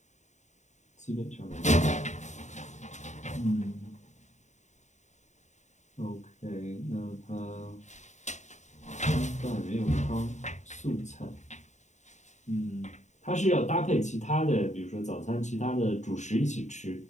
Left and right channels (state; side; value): late; right; 0.34 ms